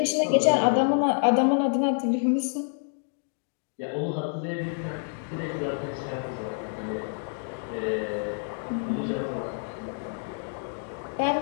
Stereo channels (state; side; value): silent; right; 59 dB below the other